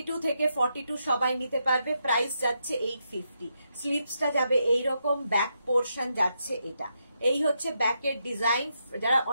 থেকে 42 সবাই নিতে পারবে, প্রাইস যাচ্ছে 850। স্লিভসটা যাবে এইরকম, ব্যাক পোর্শন যাচ্ছে এটা। এই হচ্ছে ব্যাকের ডিজাইন। যারা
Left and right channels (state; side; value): inverted; both; correlation -0.82